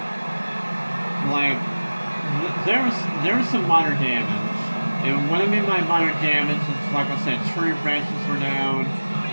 There was some minor damage, and what I mean by minor damage is, like I said, tree branches were down.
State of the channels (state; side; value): inverted; both; correlation -1.00